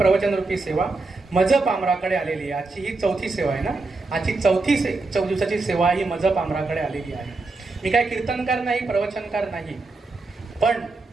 रूपी सेवा मजप आमराकडे आलेली आहे। आजची ही चौथी सेवा आहे ना, आजची चौथी दिवसाची सेवा ही मजप आमराकडे आलेली आहे। मी काय कीर्तनकार नाही, प्रवचनकार नाही, पण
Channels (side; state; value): left; quieter; 3.5 dB